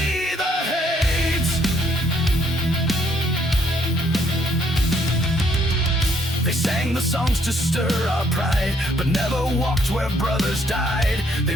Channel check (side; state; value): both; normal; correlation 0.68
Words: the hate. They sang the songs to stir our pride, but never walked where brothers died. They